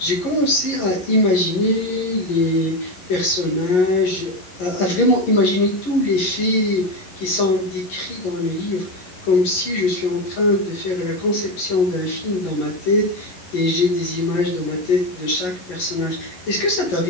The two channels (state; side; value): late; right; 11 ms